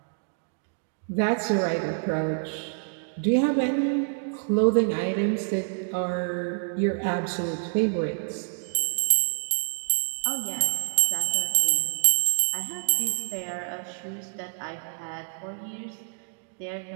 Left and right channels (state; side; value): silent; left; digital silence